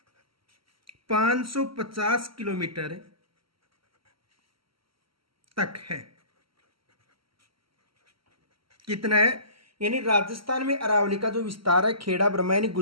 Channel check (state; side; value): late; left; 0.74 ms